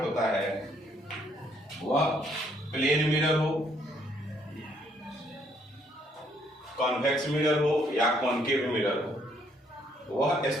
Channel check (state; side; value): normal; both; correlation 0.68